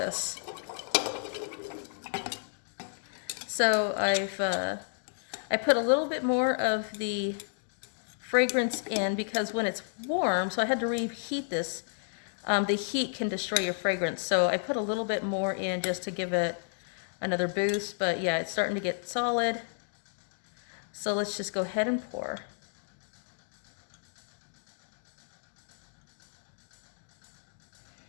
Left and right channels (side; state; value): right; silent; digital silence